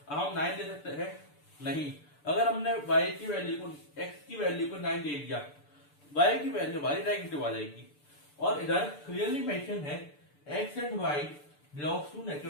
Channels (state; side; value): late; right; 6.8 ms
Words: हम 9 दे सकते हैं? नहीं। अगर हमने y की वैल्यू को x की वैल्यू को 9 दे दिया, y की वैल्यू हमारी नेगेटिव आ जाएगी। और इधर क्लियरली मेंशन है x and y belongs to